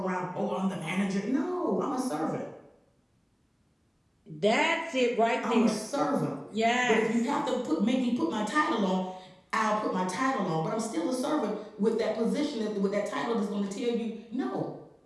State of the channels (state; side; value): identical; both; correlation 1.00